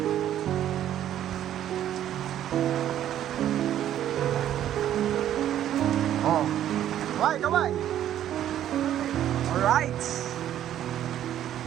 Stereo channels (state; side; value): quieter; left; 11.3 dB